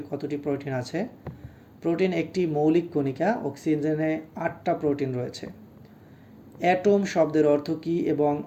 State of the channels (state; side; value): identical; both; correlation 1.00